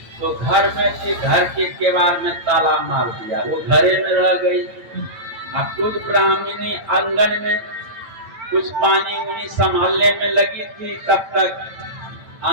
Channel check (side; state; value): left; late; 8.9 ms